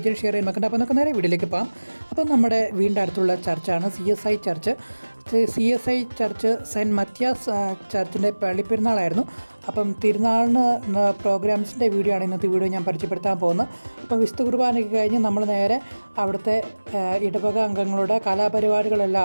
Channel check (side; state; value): both; inverted; correlation -1.00